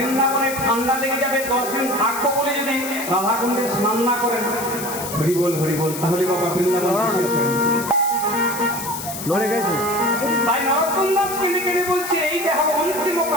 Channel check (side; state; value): left; noise; hiss, 8 dB below the sound